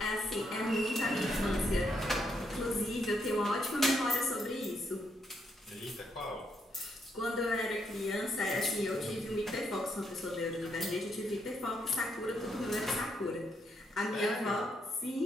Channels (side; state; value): both; normal; correlation 0.77